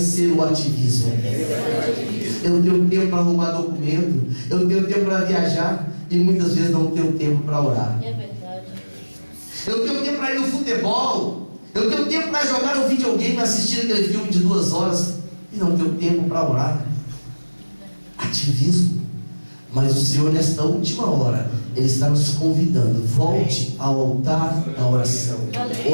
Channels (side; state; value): both; inverted; correlation -1.00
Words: o ativismo. Eu tenho tempo para arrumar documento, eu tenho tempo para viajar, e muitas vezes não tenho tempo para orar. É verdade. Eu tenho tempo para ir no futebol, eu tenho tempo para jogar no videogame, assistir aquele filme de 2 horas, e não tenho tempo para orar. Ativismo. Mas o Senhor, nesta última hora, Ele está nos convidando: volte ao altar da oração.